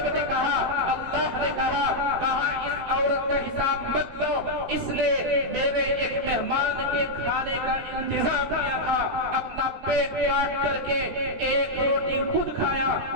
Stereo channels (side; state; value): left; late; 16 ms